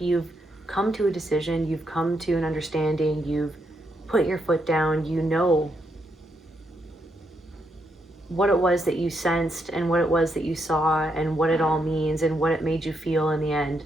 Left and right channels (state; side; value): normal; both; correlation 0.79